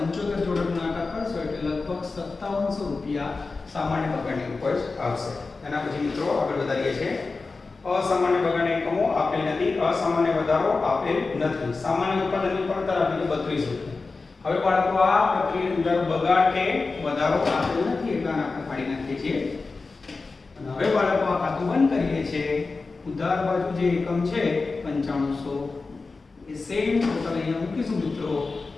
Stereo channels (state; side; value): quieter; right; 4.0 dB